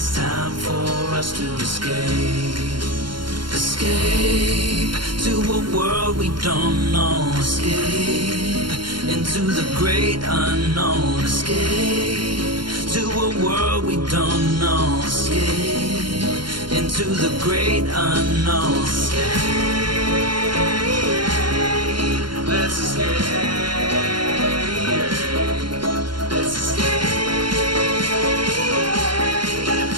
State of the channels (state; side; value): late; left; 0.72 ms